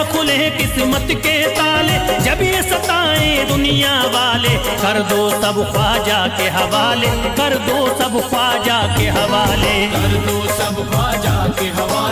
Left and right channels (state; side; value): identical; both; correlation 1.00